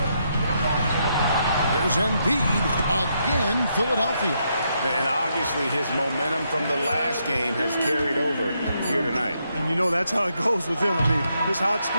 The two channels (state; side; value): inverted; both; correlation -0.78